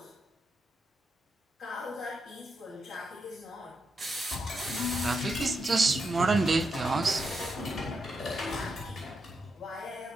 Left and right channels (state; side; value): normal; both; correlation 0.84